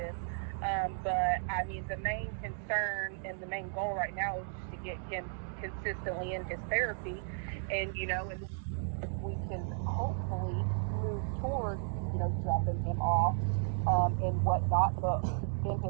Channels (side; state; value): left; silent; 55 dB below the other